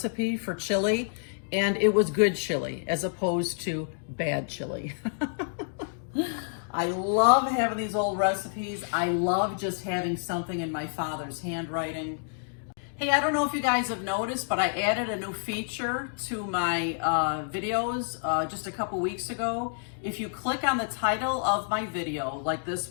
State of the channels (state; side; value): silent; right; digital silence